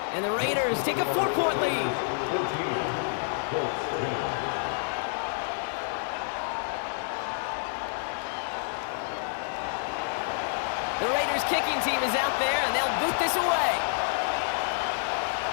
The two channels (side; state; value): right; silent; digital silence